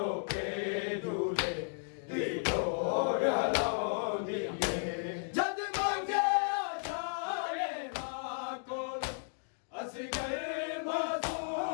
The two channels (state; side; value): silent; right; digital silence